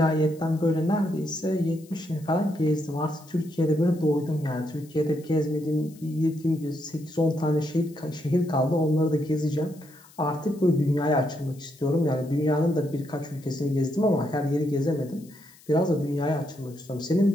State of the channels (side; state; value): left; noise; hiss, 25 dB below the sound